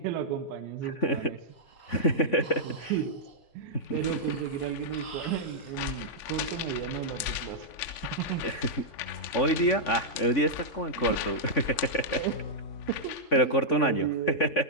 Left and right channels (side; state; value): right; late; 3.5 ms